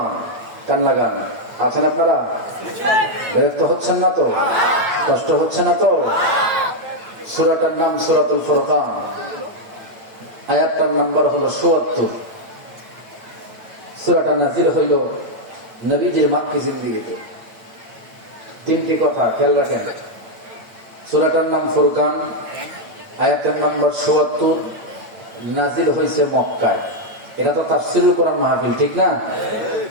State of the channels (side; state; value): left; late; 8.8 ms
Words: কান লাগান আছেন আপনারা? বিরক্ত হচ্ছেন না তো? কষ্ট হচ্ছে না তো? সূরাটার নাম সূরাতুল ফুরকান, আয়াতটার নাম্বার হলো ৭৪। সূরাটা নাযিল হইল নবীজির মাক্কি জিন্দেগিতে। 3টি কথা খেয়াল রাখেন। সূরাটার নাম ফুরকান, আয়াতের নাম্বার ৭৪, নাযিল হয়েছে মক্কায়। এটা তো তাফসীরুল কোরআন মাহফিল, ঠিক না?